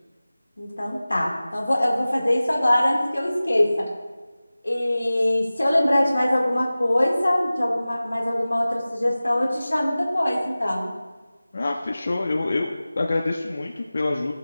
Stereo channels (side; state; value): both; inverted; correlation -0.97